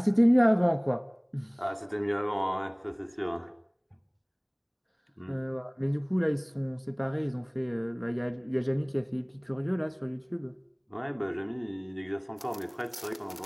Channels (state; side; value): identical; both; correlation 1.00